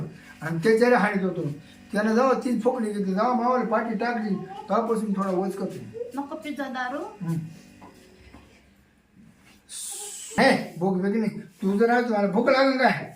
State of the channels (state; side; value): identical; both; correlation 1.00